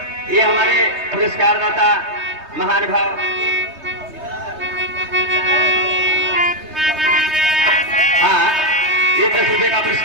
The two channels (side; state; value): left; late; 3.2 ms